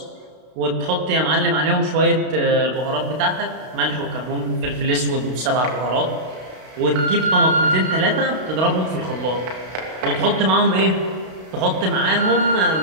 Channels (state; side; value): late; left; 32 ms